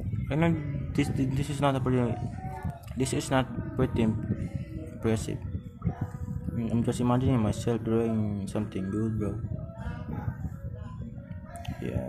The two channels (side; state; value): both; identical; correlation 1.00